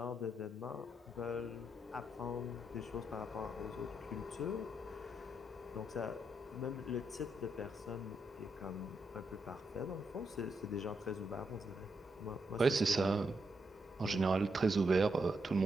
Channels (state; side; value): normal; both; correlation 0.81